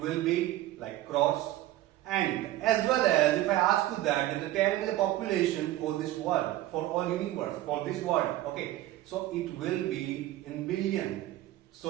be like crores. And as well as if I ask you that, then tell me the population for this world, for all universe, for this world. Okay. So it will be in billion.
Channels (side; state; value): left; quieter; 15.2 dB